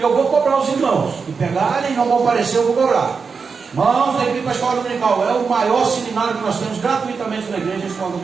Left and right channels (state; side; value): quieter; left; 5.3 dB